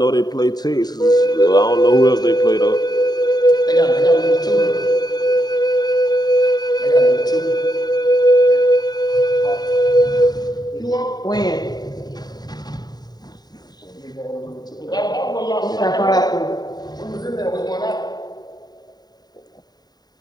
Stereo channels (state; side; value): late; right; 0.20 ms